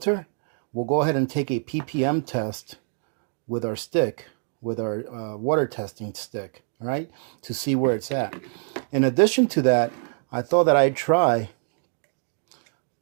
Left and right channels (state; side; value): silent; left; 62 dB below the other